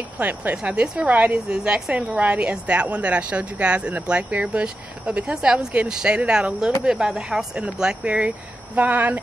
plants. Now this variety is the exact same variety as that one that I showed you guys in the blackberry bush, but because that was getting shaded out a little bit by the house and the blackberry vine,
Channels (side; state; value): both; normal; correlation 0.89